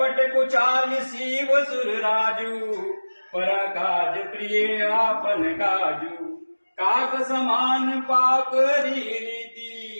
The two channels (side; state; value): both; inverted; correlation -1.00